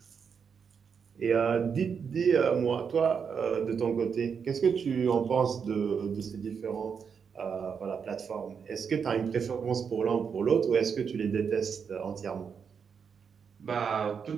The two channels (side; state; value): left; quieter; 6.5 dB